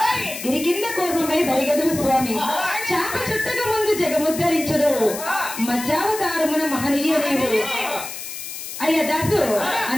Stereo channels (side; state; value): left; noise; hiss, 9 dB below the sound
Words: గిరి కింద కోపమై బరిగదు స్వామి చాప చుట్టక ముందు జగముద్ధరించడు మధ్యావతారమున మహనీయ నీవు అయ్యా దాసు.